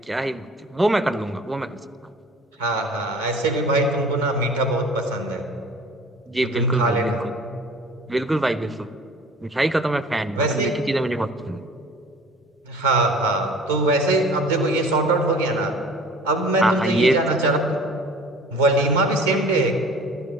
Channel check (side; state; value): both; normal; correlation 0.46